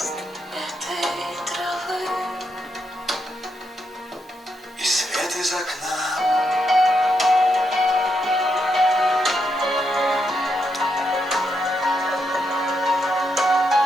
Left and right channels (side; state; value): both; normal; correlation 0.81